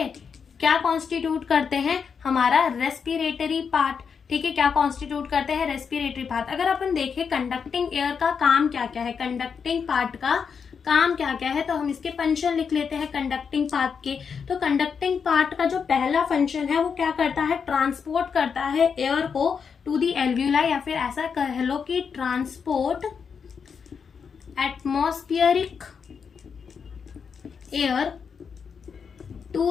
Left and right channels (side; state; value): right; quieter; 6.3 dB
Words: क्या कॉन्स्टिट्यूट करते हैं, हमारा रेस्पिरेटरी पार्ट, ठीक है, क्या कॉन्स्टिट्यूट करते हैं, रेस्पिरेटरी पार्ट। अगर अपन देखें कंडक्टिंग एयर का काम क्या क्या है, कंडक्टिंग पार्ट का काम क्या क्या है, तो हम इसके फंक्शन लिख लेते हैं कंडक्टिंग पार्ट के। तो कंडक्टिंग पार्ट का जो पहला फंक्शन है वो क्या करता है, ट्रांसपोर्ट करता है एयर को टू दी एल्वियोलाई, या फिर ऐसा कह लो कि transport atmospheric air